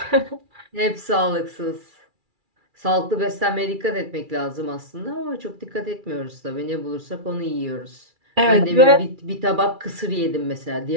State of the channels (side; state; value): left; late; 2.3 ms